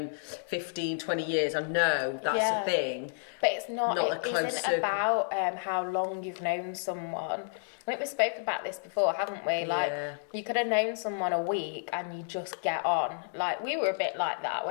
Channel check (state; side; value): silent; right; digital silence